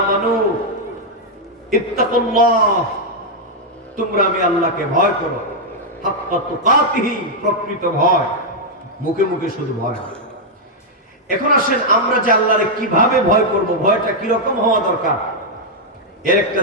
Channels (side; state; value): both; normal; correlation -0.03